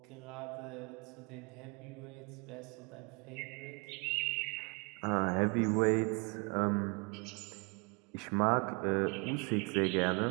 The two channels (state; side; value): quieter; left; 32.8 dB